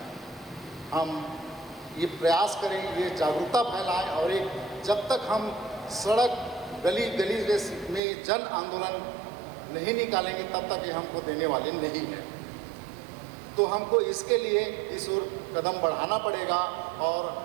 हम ये प्रयास करें, ये जागरूकता फैलाएं और एक जब तक हम सड़क, गली गली में जन आंदोलन नहीं निकालेंगे तब तक ये हमको देने वाले नहीं हैं। तो हमको इसके लिए इस ओर कदम बढ़ाना पड़ेगा और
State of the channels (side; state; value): left; drops out; at 8.0 s